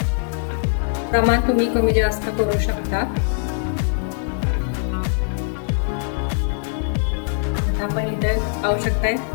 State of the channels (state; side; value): silent; right; digital silence